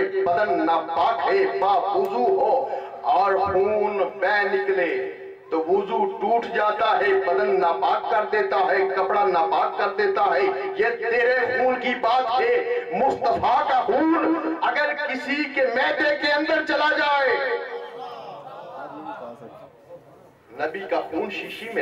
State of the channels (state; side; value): identical; both; correlation 1.00